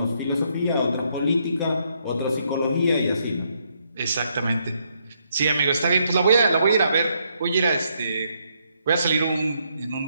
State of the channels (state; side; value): inverted; both; correlation -0.75